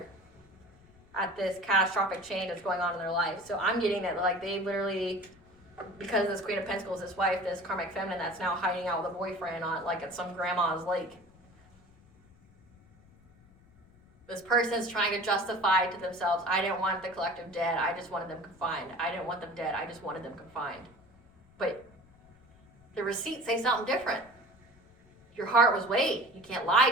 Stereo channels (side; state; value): left; noise; rumble, 27 dB below the sound